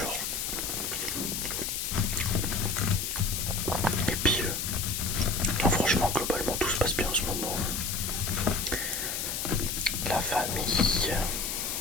Et puis, non, franchement, globalement, tout se passe bien en ce moment. La famille,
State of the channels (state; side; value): noise; left; hiss, 2 dB below the sound